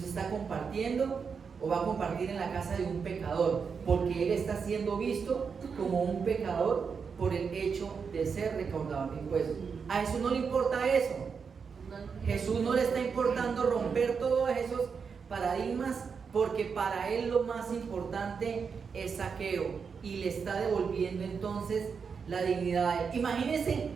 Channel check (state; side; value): quieter; left; 5.9 dB